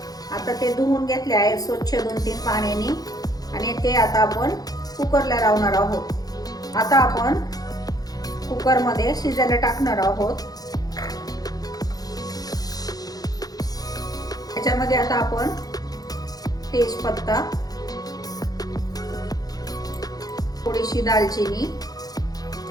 आता ते धुवून घेतले आहे स्वच्छ 2-3 पाण्याने आणि ते आता आपण कुकरला लावणार आहोत। आता आपण कुकर मध्ये शिजायला टाकणार आहोत। त्याच्यामध्ये आता आपण तेजपत्ता, थोडीशी दालचिनी,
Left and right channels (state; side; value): late; right; 0.18 ms